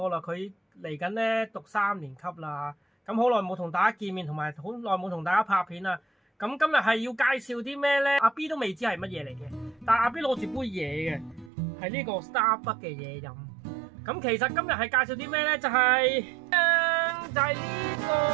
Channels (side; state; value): left; drops out; at 11.5 s